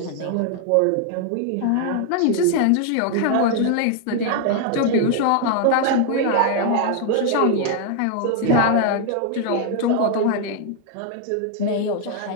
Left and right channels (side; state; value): both; different; correlation 0.00